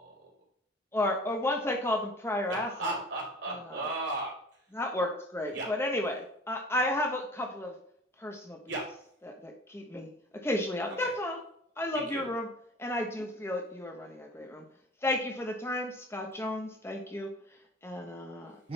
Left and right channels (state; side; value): normal; both; correlation 0.42